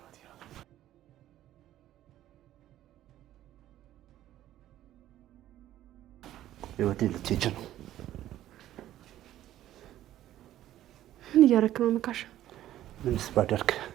ይላል። ህይወቴ ልትሄጂ ነው? ምን እያደረክ ነው መካሻ? ምንስ ባደርግ?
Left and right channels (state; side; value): quieter; left; 13.1 dB